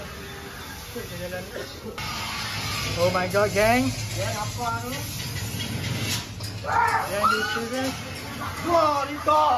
ke jalan ni? Oh my god, gang. Gang apa tu? Yang di sini. Wah, Rito.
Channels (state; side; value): identical; both; correlation 1.00